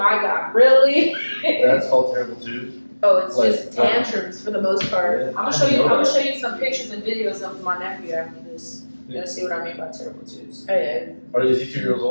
god, really? That's called terrible too. Oh, it's Like, just tantrums for the most part. I'm gonna show you. I'm gonna show you some pictures and videos of my nephew after this. You're gonna see what I mean by terrible twos. Oh yeah. Is he 2 years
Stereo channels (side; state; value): both; inverted; correlation -1.00